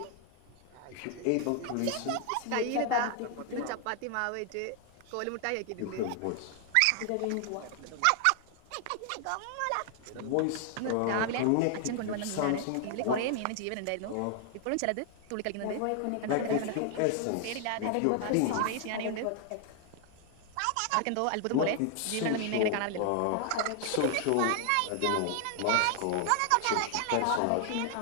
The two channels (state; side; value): different; both; correlation 0.00